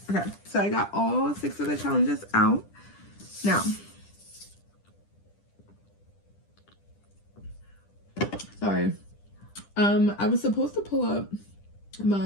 Okay, so I got all 6 of the challenges out. Now, sorry, I was supposed to pull up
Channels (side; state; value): right; late; 10 ms